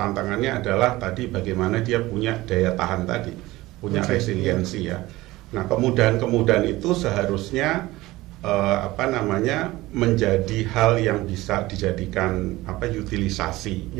adalah tadi bagaimana dia punya daya tahan tadi, punya resiliensi ya. Nah, kemudahan itu seharusnya menjadi hal yang bisa dijadikan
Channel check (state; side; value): quieter; left; 18.6 dB